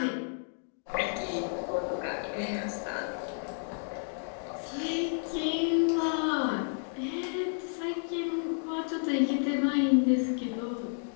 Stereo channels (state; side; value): silent; right; digital silence